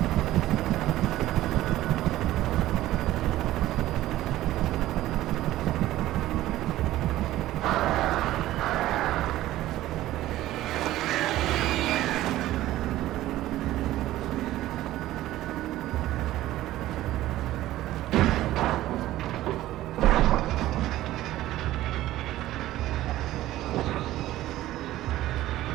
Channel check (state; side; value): quieter; left; 15.1 dB